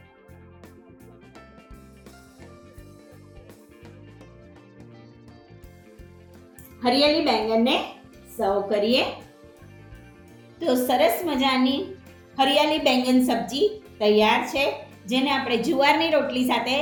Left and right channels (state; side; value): identical; both; correlation 1.00